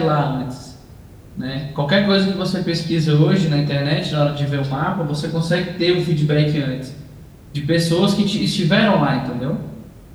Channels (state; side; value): identical; both; correlation 1.00